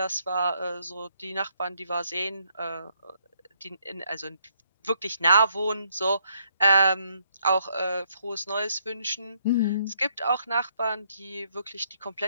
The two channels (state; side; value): inverted; both; correlation -0.71